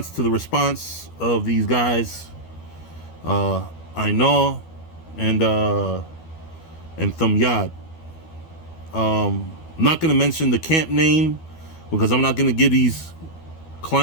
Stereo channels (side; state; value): right; late; 12 ms